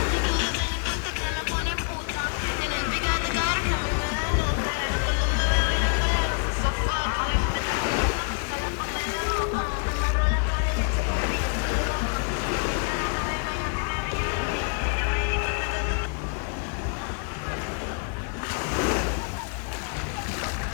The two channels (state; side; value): quieter; right; 39.2 dB